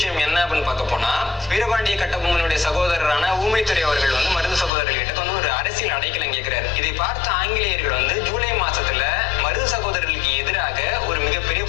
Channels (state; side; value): drops out; right; at 4.7 s